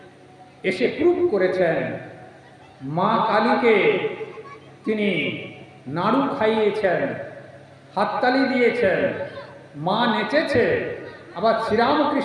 এসে প্রুভ করেছেন। মা কালীকে তিনি নাড়ু খাইয়েছেন, হাততালি দিয়েছেন, মা নেচেছে, আবার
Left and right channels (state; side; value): identical; both; correlation 1.00